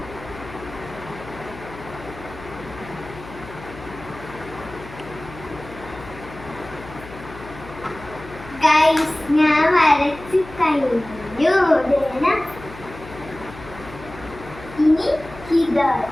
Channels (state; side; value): noise; left; hum, 16 dB below the sound